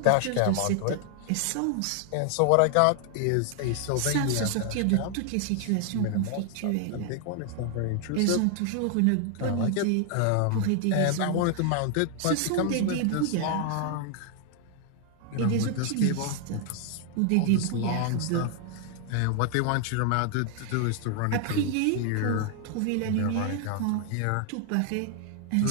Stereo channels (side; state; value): both; different; correlation 0.00